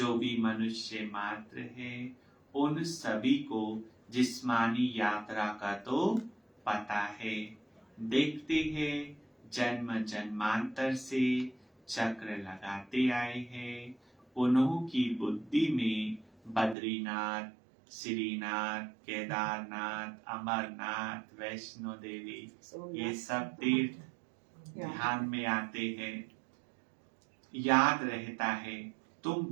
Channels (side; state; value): left; drops out; at 16.8 s